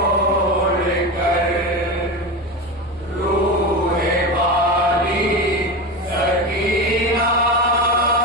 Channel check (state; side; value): normal; both; correlation 0.22